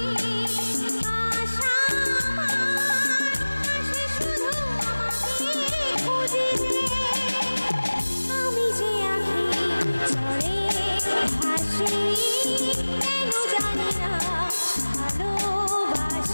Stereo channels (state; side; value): inverted; both; correlation -1.00